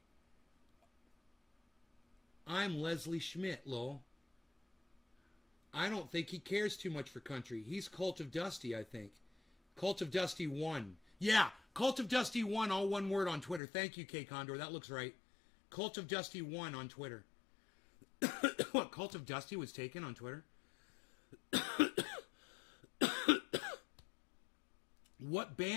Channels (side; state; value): right; drops out; at 13.6 s